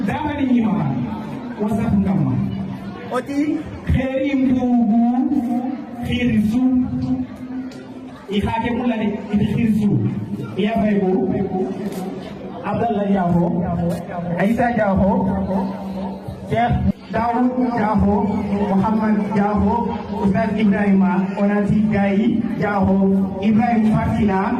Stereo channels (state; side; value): identical; both; correlation 1.00